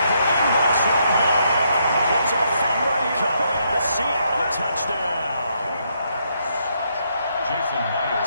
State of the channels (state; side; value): inverted; both; correlation -0.75